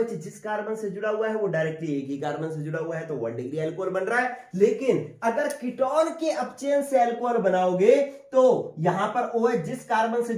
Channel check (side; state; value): both; identical; correlation 1.00